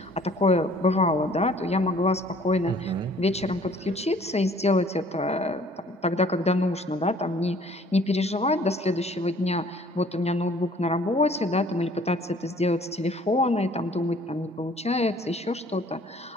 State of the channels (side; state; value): both; normal; correlation 0.55